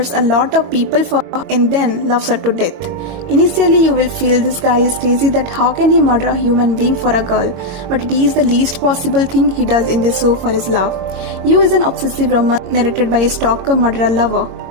a lot of people for her, and then loves her to death. Initially, you will feel this guy is crazy that how can he murder a human being for a girl, but it is the least possible thing he does in this show for his love. You is an obsessive romance narrated by a stalker murderer lover.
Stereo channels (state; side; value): late; left; 22 ms